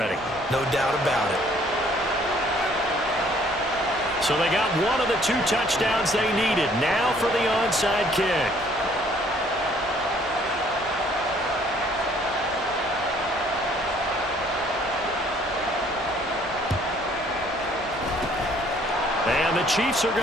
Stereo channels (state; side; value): normal; both; correlation 0.60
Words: No doubt about it. So they got one of the 2 touchdowns they needed. Now for the onside kick. And the Chiefs are